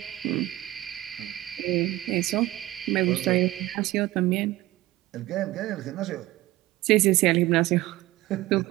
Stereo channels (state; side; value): quieter; left; 17.0 dB